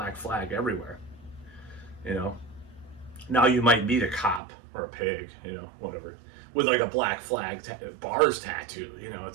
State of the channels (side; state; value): left; drops out; at 4.4 s